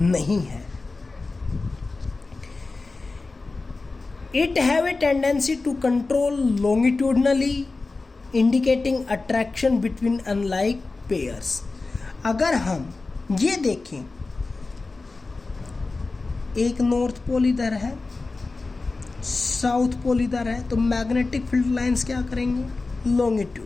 नहीं है। It have a tendency to control longitudinally, indicating attraction between unlike pairs। अगर हम ये देखें, एक नॉर्थ पोल इधर है, साउथ पोल इधर है, तो मैग्नेटिक फील्ड लाइंस क्या करेंगे?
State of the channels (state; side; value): quieter; right; 3.6 dB